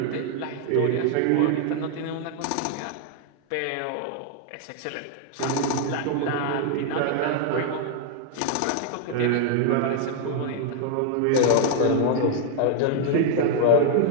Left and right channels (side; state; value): both; different; correlation -0.01